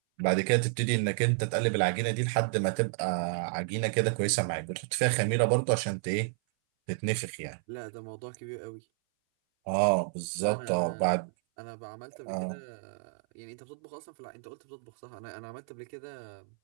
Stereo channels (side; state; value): left; silent; 57 dB below the other